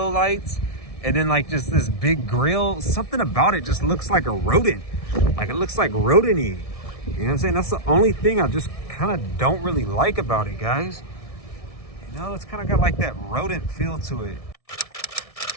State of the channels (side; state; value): right; late; 1.6 ms